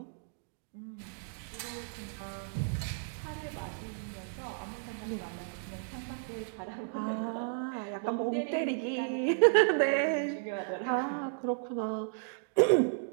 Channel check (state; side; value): silent; left; digital silence